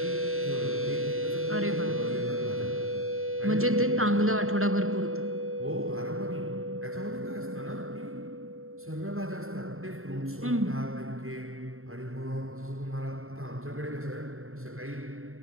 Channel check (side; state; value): left; late; 0.62 ms